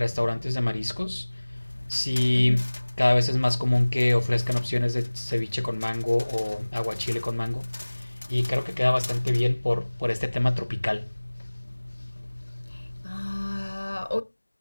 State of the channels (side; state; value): both; inverted; correlation -1.00